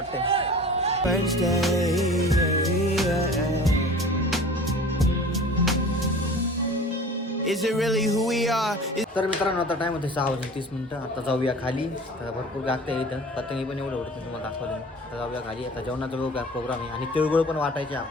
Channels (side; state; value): both; normal; correlation 0.42